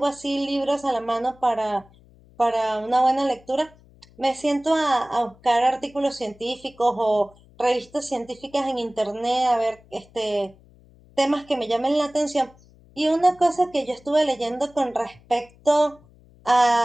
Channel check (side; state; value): left; noise; hum, 27 dB below the sound